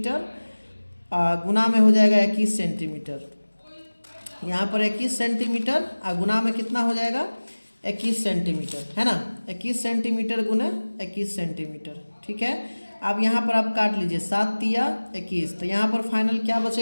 गुना में हो जाएगा 21 सेंटीमीटर। यहाँ पर 21 सेंटीमीटर गुना में कितना हो जाएगा, 21 सेंटीमीटर, है ना। 21 सेंटीमीटर गुना 21 सेंटीमीटर, ठीक है। अब यहाँ पर आप काट लीजिए, 7 तिया 21, तो यहाँ पर फाइनल क्या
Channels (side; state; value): both; inverted; correlation -1.00